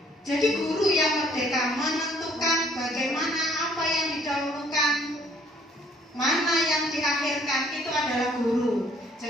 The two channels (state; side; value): normal; both; correlation 0.61